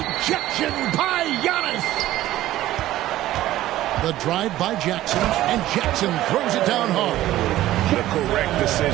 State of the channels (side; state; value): left; quieter; 14.7 dB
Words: by Giannis. The drive by Jackson, and Jackson throws it down hard. The correct